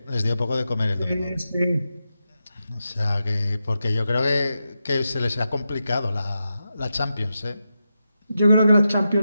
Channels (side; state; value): both; inverted; correlation -0.89